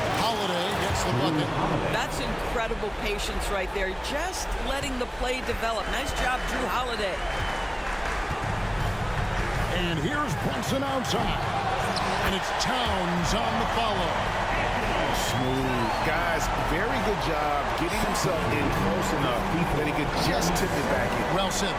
Holiday gets the bucket. That's incredible patience right there. Just letting the play develop. Nice job, Drew Holiday. And here's Brunson outside. And it's Towns on the follow. Smooth. Guys, very good job getting himself in close enough that he could just tip it back in. Well said.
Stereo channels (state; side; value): identical; both; correlation 1.00